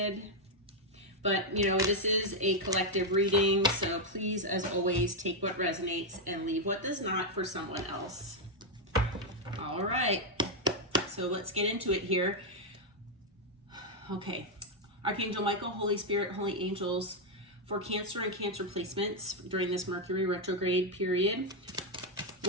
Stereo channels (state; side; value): normal; both; correlation 0.00